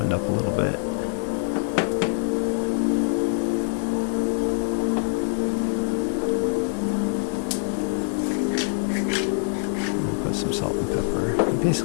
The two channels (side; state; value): right; silent; digital silence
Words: up a little bit. Some salt and pepper. You